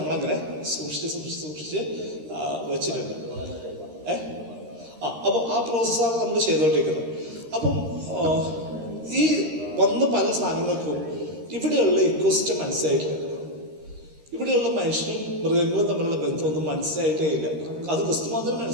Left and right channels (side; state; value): left; late; 13 ms